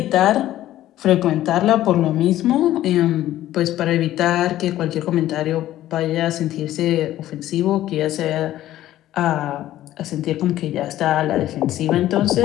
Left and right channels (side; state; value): right; quieter; 13.8 dB